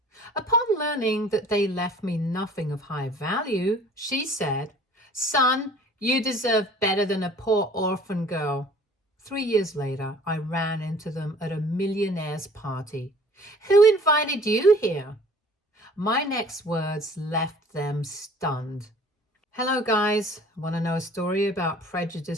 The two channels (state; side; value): normal; both; correlation 0.50